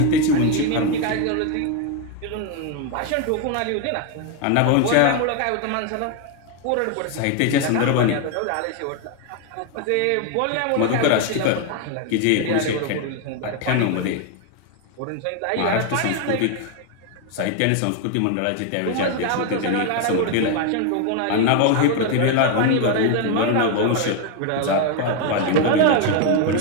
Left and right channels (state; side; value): different; both; correlation 0.01